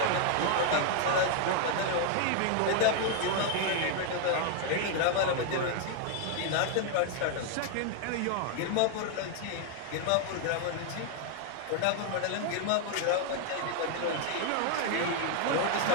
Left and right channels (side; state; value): both; different; correlation 0.00